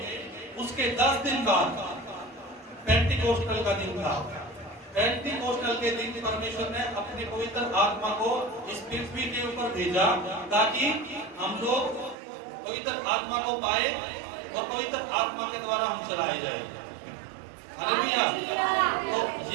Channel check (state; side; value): drops out; left; at 12.2 s